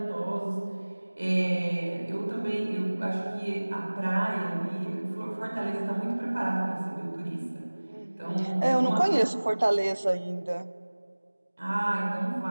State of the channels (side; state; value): both; inverted; correlation -1.00